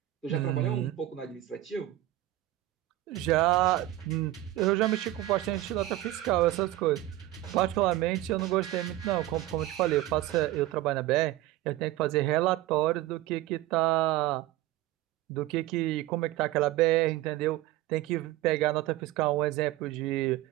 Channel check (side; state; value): left; quieter; 15.6 dB